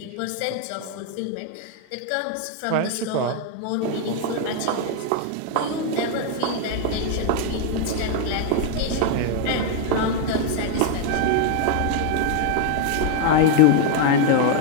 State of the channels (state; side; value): different; both; correlation 0.00